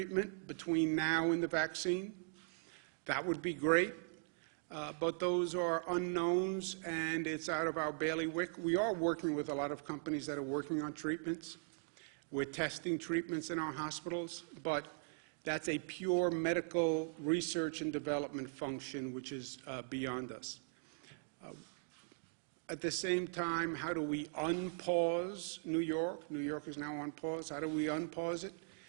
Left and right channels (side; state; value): left; silent; digital silence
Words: between now and the vaccine. That would be great. But those are unknowns, and it's out of our bailiwick. We are working with a lot of companies that are working on treatments. We're testing treatments in our hospitals, but that's a pure medical research and development function, which is beyond us. At the same time, how do we unpause New York? New York is now on pause. How do we unpause it?